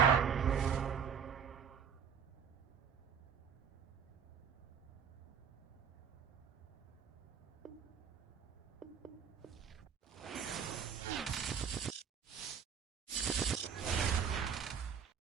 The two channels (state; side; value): quieter; left; 7.3 dB